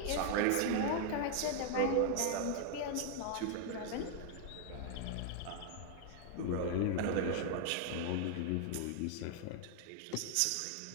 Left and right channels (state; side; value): different; both; correlation 0.00